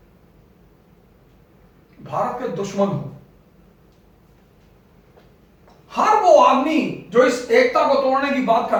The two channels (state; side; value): identical; both; correlation 1.00